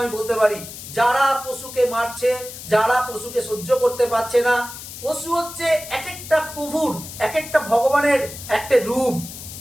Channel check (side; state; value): left; noise; hiss, 12 dB below the sound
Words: আমি বলতে পারি। যারা পশুকে মারছে, যারা পশুকে সহ্য করতে পারছে না, পশু হচ্ছে এক একটা প্রভুর, এক একটা ভগবানের একটা রূপ।